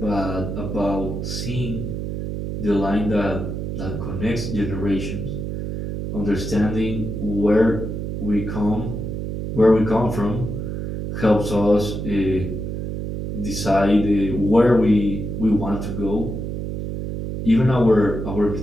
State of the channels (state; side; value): noise; right; hum, 4 dB below the sound